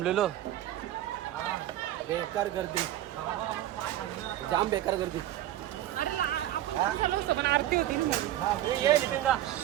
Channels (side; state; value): left; quieter; 13.4 dB